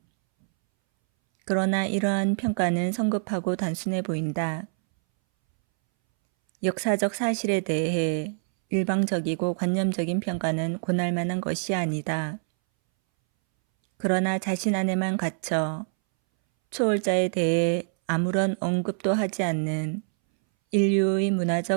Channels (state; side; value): silent; left; 61 dB below the other